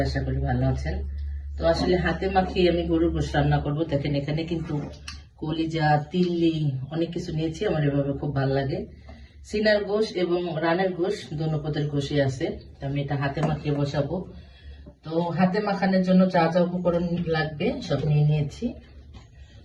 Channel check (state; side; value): identical; both; correlation 1.00